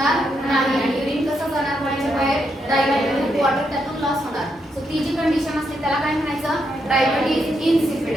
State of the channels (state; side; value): normal; both; correlation 0.80